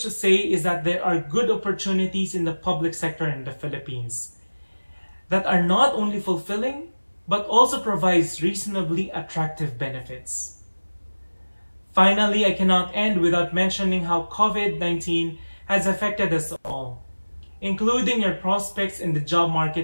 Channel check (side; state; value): both; inverted; correlation -1.00